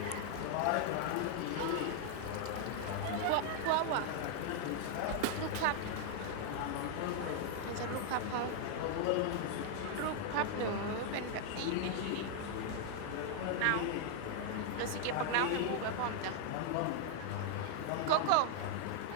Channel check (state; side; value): different; both; correlation 0.00